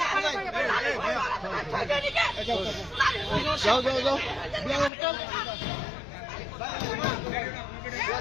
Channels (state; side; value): drops out; right; at 4.9 s